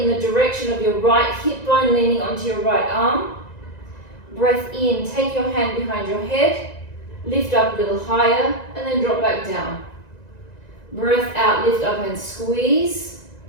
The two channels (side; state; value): right; late; 1.9 ms